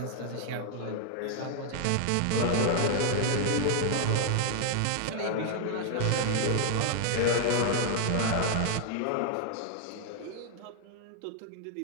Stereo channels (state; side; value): different; both; correlation 0.00